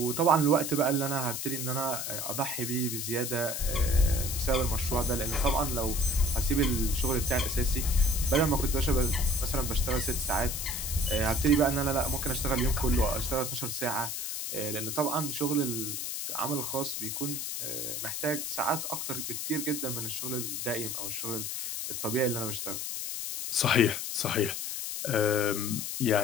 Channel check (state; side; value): noise; left; hiss, 4 dB below the sound